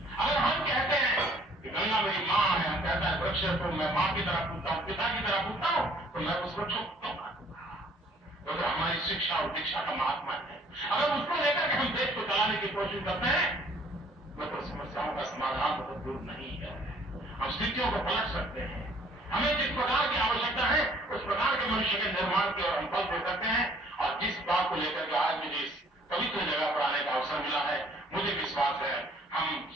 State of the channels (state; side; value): normal; both; correlation 0.58